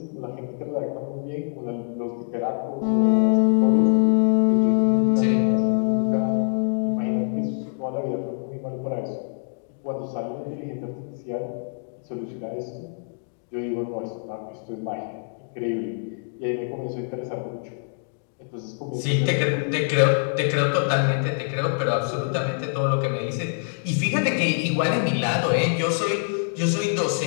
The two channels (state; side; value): silent; right; digital silence